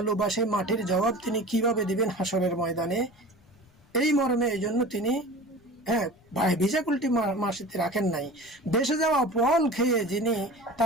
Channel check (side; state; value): left; noise; rumble, 30 dB below the sound